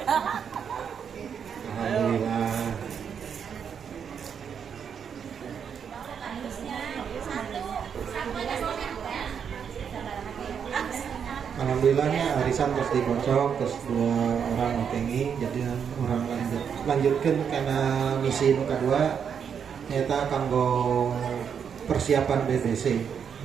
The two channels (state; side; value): quieter; left; 7.4 dB